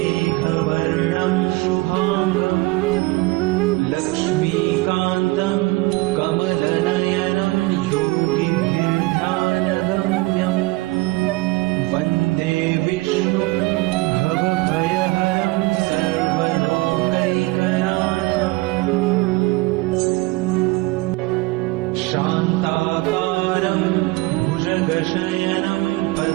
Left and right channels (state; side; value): quieter; left; 22.1 dB